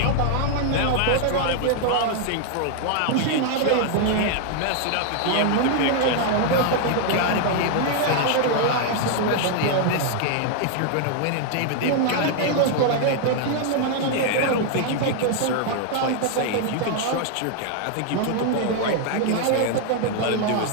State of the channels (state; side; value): different; both; correlation 0.00